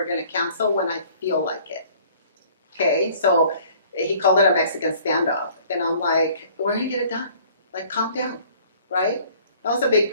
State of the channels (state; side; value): inverted; both; correlation -0.54